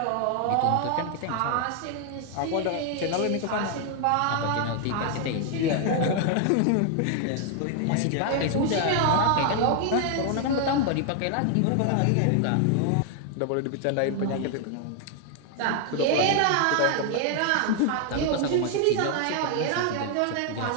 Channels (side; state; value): both; different; correlation 0.00